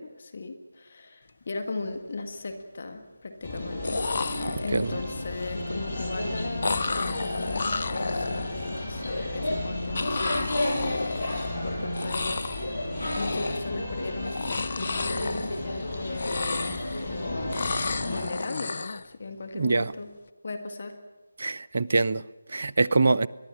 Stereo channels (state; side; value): inverted; both; correlation -0.89